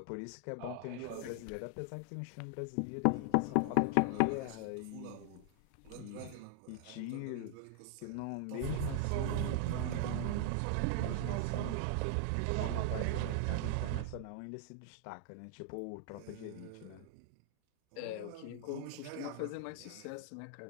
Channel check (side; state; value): both; different; correlation 0.00